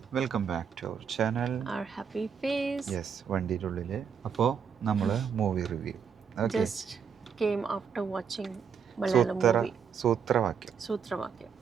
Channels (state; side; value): quieter; left; 6.9 dB